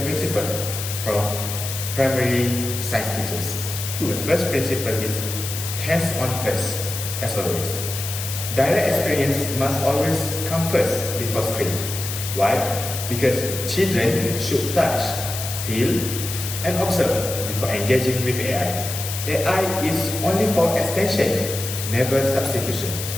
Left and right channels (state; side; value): noise; left; hiss, 6 dB below the sound